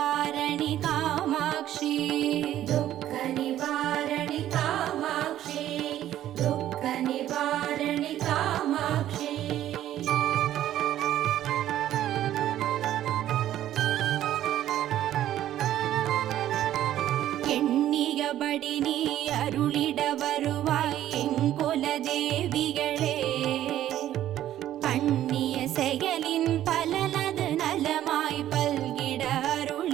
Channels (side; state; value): left; quieter; 12.4 dB